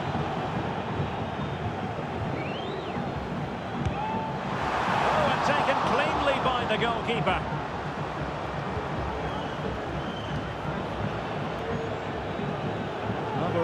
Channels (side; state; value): both; identical; correlation 1.00